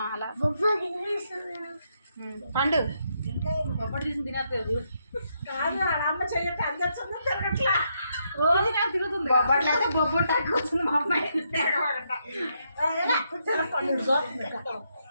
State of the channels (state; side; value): inverted; both; correlation -0.78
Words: అలా పండు బొబ్బట్లు తీసి తినట్లేదు కాదు. అమ్మ చెయ్యట్టు అందరు తిరగట్లా, రోజు నాకు తిరుగుతుంది. బొబ్బట్లు అయితే బొబ్బట్లు కూర్చుంది మా అమ్మాయి.